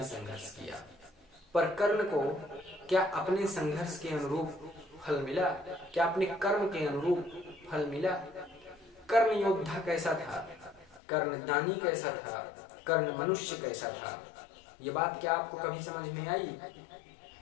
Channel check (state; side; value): drops out; right; at 11.0 s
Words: संघर्ष किया, पर कर्ण को क्या अपने संघर्ष के अनुरूप फल मिला? क्या अपने कर्म के अनुरूप फल मिला? कर्ण योद्धा कैसा था? कर्ण दानी कैसा था? कर्ण मनुष्य कैसा था? ये बात क्या आपको कभी समझ में आई?